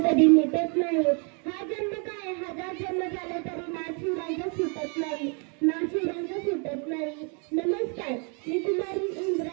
मिटत नाही। हा जन्म काय हजार जन्म झाले तरी नाशिवरांचा सुटत नाही, नाशिवरांचा सुटत नाही। नमस्कार, मी कुमारी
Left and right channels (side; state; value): left; quieter; 36.8 dB